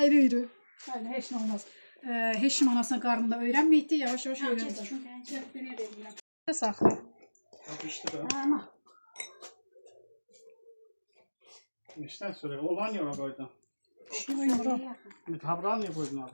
Hayır, heç nə olmaz. Heç kim anasına qarnında öyrənməyikdi, yavaş-yavaş öyrəndik. Gəl, beni də eləyirəm. Saxla. Yapıştı da. Ama. İşten sonra olan yola koydun. Tabran niye koydun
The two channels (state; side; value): inverted; both; correlation -1.00